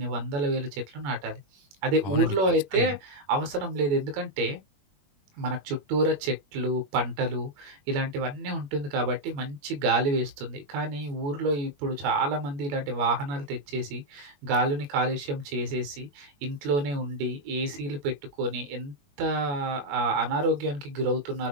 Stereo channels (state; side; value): late; left; 21 ms